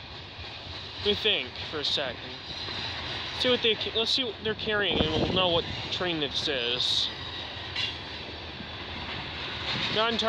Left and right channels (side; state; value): both; identical; correlation 1.00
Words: Let me think for a second. Let's see what they're carrying, and we'll know what train this is. Not